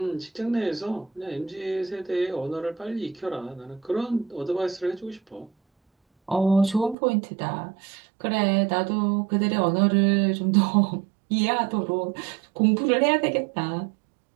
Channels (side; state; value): left; drops out; at 7.0 s